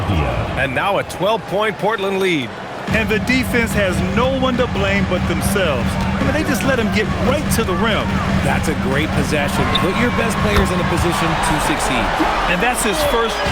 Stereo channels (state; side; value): identical; both; correlation 1.00